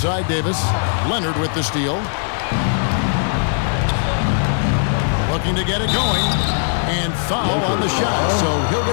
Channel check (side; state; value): right; silent; digital silence